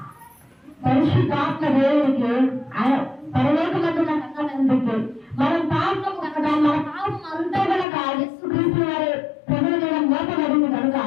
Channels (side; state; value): right; drops out; at 7.9 s